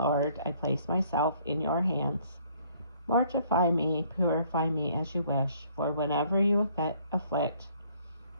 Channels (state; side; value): inverted; both; correlation -0.62